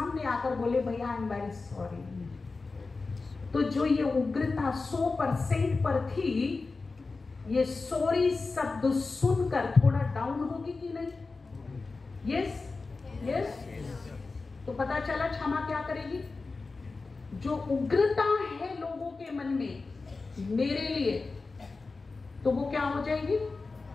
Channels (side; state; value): right; quieter; 3.9 dB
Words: आकर बोले, भैया आई एम वेरी सॉरी, तो जो ये उग्रता 100% पर थी, ये सॉरी शब्द सुनकर थोड़ा डाउन होगी कि नहीं? Yes yes. तो पता चला क्षमा क्या करेगी? जो उग्रता है लोगों के मन में मेरे लिए, तो वो क्या हो जाएगी?